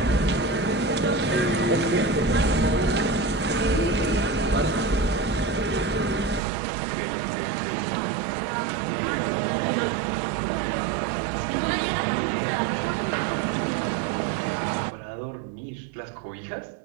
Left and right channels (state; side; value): drops out; left; at 6.4 s